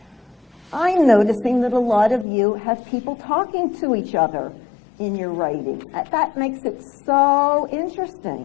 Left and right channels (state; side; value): drops out; right; at 2.2 s